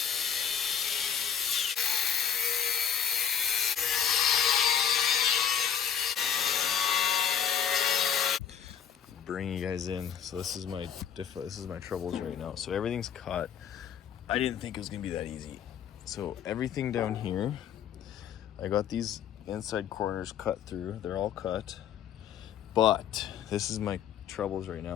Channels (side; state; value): right; quieter; 8.3 dB